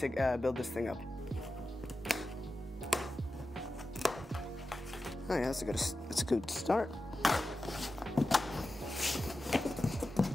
build this thing up. Oh yeah, that's a good start.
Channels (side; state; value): both; normal; correlation 0.93